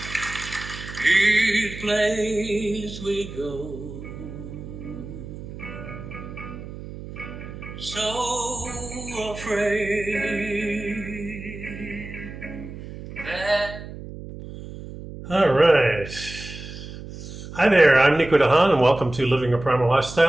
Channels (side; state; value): right; noise; hum, 12 dB below the sound